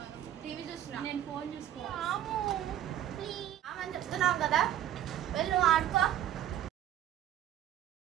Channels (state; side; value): quieter; left; 11.6 dB